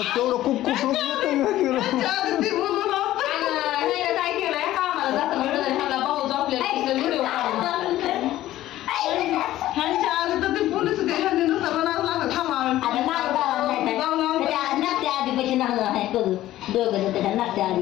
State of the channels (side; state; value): right; quieter; 14.5 dB